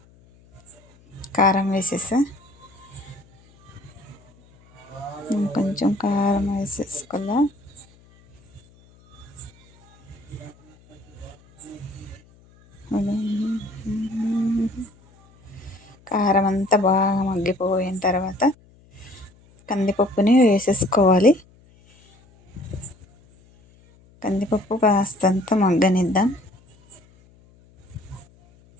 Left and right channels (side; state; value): left; noise; hum, 28 dB below the sound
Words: కారం వేసేసా. కొంచెం కారం వేసేసుకోవాలా. కారం అంతా బాగా మగ్గిపోయిన తర్వాత కందిపప్పుని వేసేసుకోవాలి. కందిపప్పు కాస్తంత మగ్గనిద్దాం.